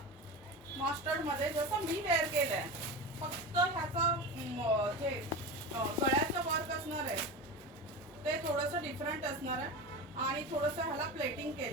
मास्टर्ड मध्ये, जसं मी वेअर केलंय. फक्त ह्याचं जे गळ्याचं वर्क असणार आहे ते थोडंसं डिफरंट असणार आहे. आणि थोडंसं ह्याला प्लेटिंग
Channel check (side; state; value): both; normal; correlation 0.26